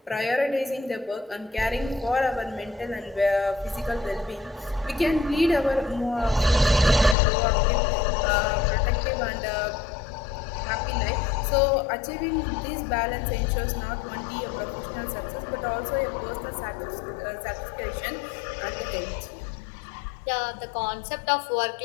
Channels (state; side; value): drops out; right; at 7.2 s